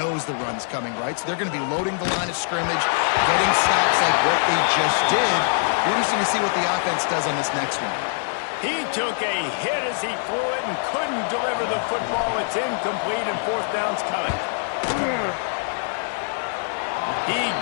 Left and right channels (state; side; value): silent; right; 63 dB below the other